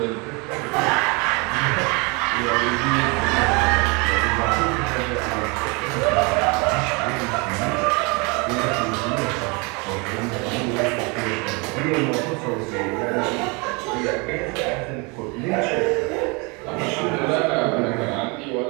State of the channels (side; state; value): left; quieter; 29.6 dB